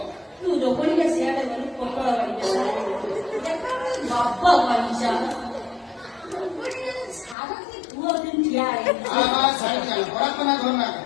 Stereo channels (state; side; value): drops out; right; at 7.4 s